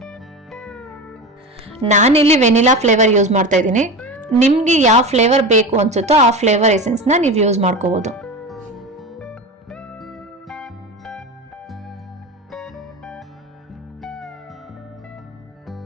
ನಾನಿಲ್ಲಿ ವೆನಿಲಾ ಫ್ಲೇವರ್ ಯೂಸ್ ಮಾಡ್ತಾ ಇದ್ದೀನಿ. ನಿಮ್ಗೆ ಯಾವ ಫ್ಲೇವರ್ ಬೇಕು ಅನ್ಸುತ್ತೋ ಆ ಫ್ಲೇವರ್ ಎಸೆನ್ಸ್ನ ನೀವು ಯೂಸ್ ಮಾಡ್ಕೋಬಹುದು.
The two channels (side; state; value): both; normal; correlation 0.26